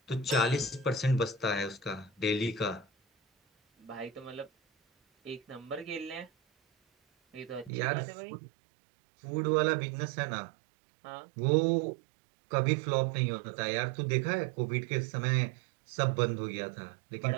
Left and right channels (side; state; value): left; drops out; at 7.7 s